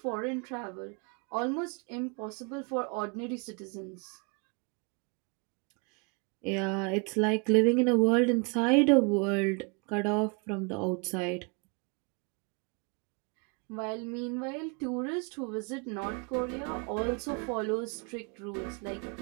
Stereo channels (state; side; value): quieter; left; 33.2 dB